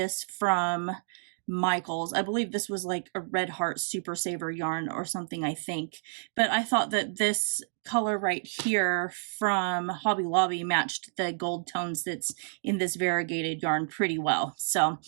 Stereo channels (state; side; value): silent; left; digital silence